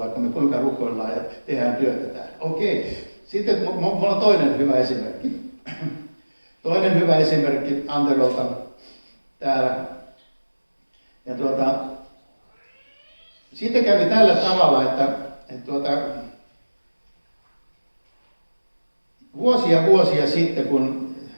me kuinka rukoillaan ja tehdään työtä täällä. Okei. Sitten mulla on toinen hyvä esimerkki. Toinen hyvä esimerkki Anterolta täällä. Ja sitten kävi tällä tavalla, että vuosia sitten, kun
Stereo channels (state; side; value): inverted; both; correlation -1.00